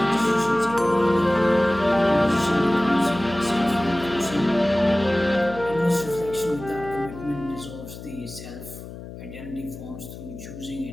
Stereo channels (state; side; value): noise; left; hum, 13 dB below the sound